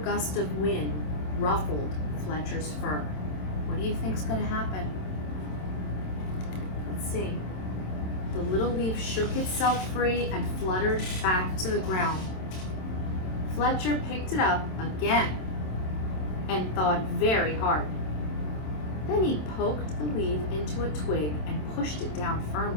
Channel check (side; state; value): right; late; 27 ms